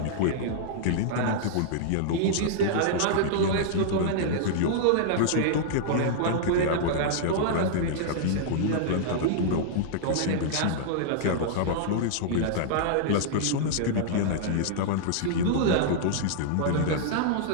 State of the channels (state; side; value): different; both; correlation -0.01